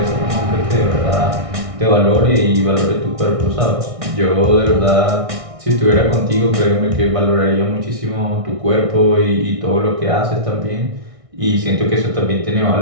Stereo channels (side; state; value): left; late; 1.6 ms